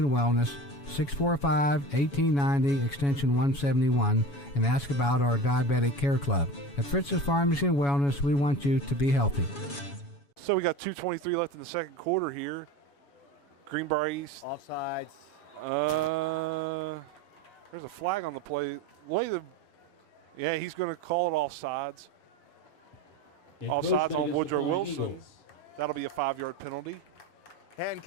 Wellness, 645-1890, extension 171, and ask about our Diabetic Care Club. At Fritz's Pharmacy and Wellness, we want you to be healthy. So we got 2:23 left in the second quarter here. Greenbrier East. Offsides. There's a flag on the play. Yeah, he's going to call it offsides. Offsides on Woodrow Wilson. That'll be a 5-yard penalty.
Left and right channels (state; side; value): late; right; 7.1 ms